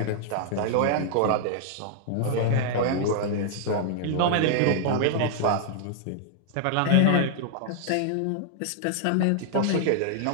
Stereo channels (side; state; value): both; different; correlation -0.01